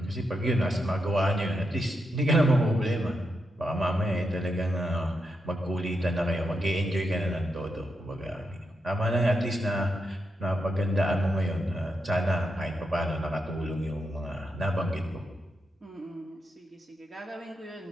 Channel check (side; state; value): both; normal; correlation 0.84